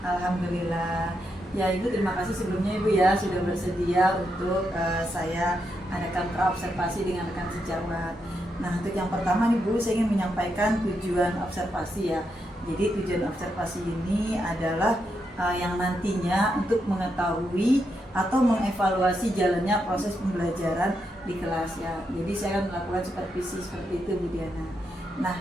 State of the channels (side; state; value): both; normal; correlation 0.82